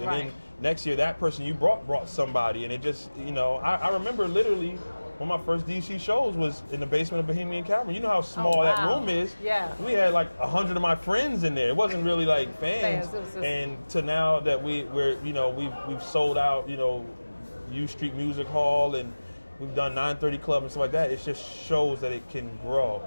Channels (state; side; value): inverted; both; correlation -1.00